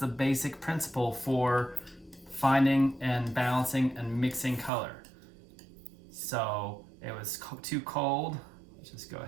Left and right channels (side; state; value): left; drops out; at 4.7 s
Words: basic principle for finding and balancing and mixing color. So it was too cold. Let's just go